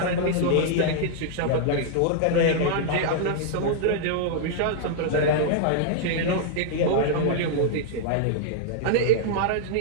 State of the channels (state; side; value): different; both; correlation -0.01